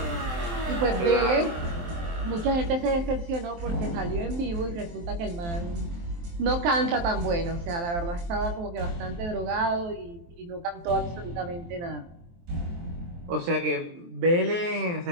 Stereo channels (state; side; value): late; left; 23 ms